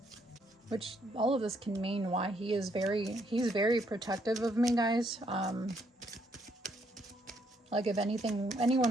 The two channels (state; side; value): normal; both; correlation 0.71